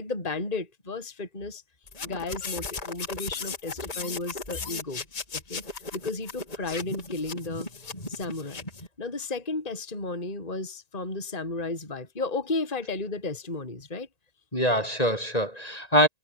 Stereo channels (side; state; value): right; late; 1.9 ms